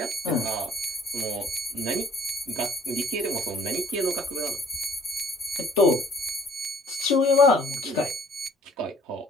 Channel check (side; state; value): both; normal; correlation 0.56